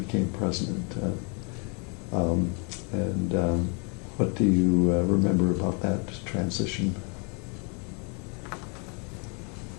president. What do you remember about that transition?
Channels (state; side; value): quieter; right; 36.4 dB